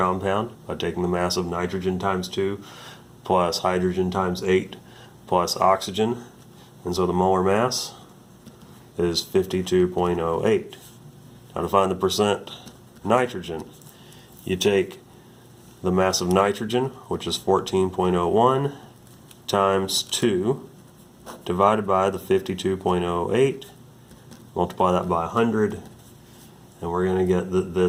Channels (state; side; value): identical; both; correlation 1.00